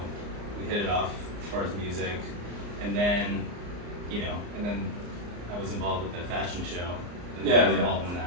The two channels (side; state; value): left; late; 34 ms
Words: we hit it off as far as music, and then, you know, I was involved with the fashion show. And I was involved in